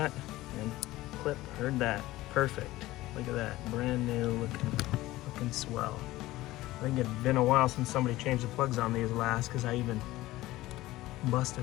and clip, heard that. Perfect. Look at that, brand new looking swell. I think it'd been a while since somebody changed the plugs on these last, because I even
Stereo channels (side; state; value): right; quieter; 17.3 dB